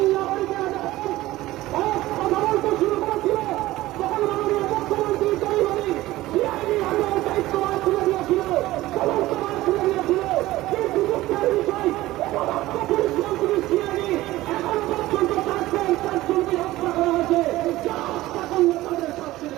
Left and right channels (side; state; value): left; quieter; 17.0 dB